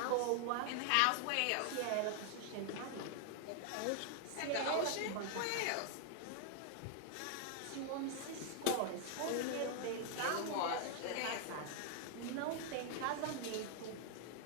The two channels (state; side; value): different; both; correlation 0.00